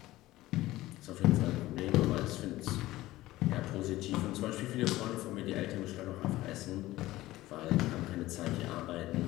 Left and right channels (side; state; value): right; quieter; 17.0 dB